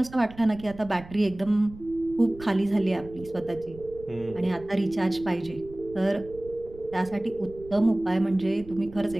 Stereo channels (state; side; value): noise; right; rumble, 18 dB below the sound